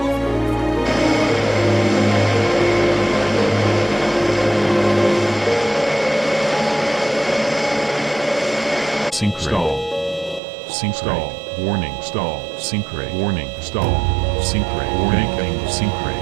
Sync stall. Sync stall. Warning stall. Sync rate. Warning stall. Sync rate. Banking. Sync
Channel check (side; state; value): left; drops out; at 10.4 s